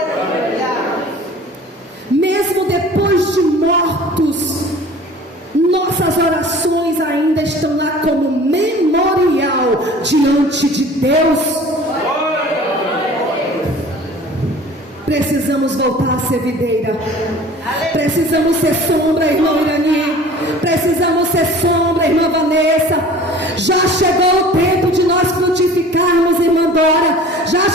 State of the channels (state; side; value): normal; both; correlation 0.45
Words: Mesmo depois de mortos, nossas orações ainda estão lá como memorial diante de Deus. Precisamos voltar a ser videira. Precisamos ser sombra, irmão Irani. Precisamos ser sombra, irmã Vanessa. Já chegou o tempo de nós frutificarmos, irmã Dora. Já